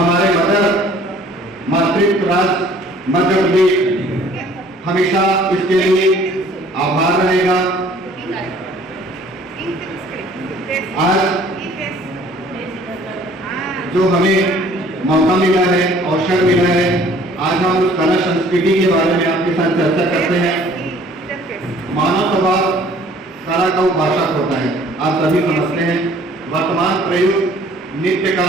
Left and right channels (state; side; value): normal; both; correlation 0.55